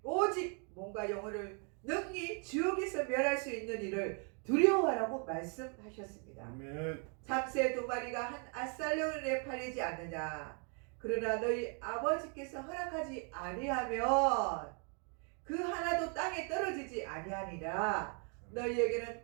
오직 몸과 영혼을 능히 지옥에서 멸할 수 있는 일을 두려워하라고 말씀하셨습니다. 아멘. 참새 2마리가 한 아살령에 팔리지 않느냐. 그러나 너희 아버지께서 허락하지 아니하면 그 하나도 땅에 떨어지지 아니하니라. 너희에게는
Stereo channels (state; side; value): quieter; left; 39.2 dB